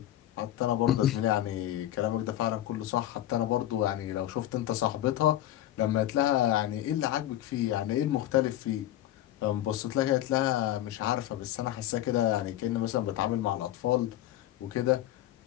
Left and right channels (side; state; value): right; quieter; 13.3 dB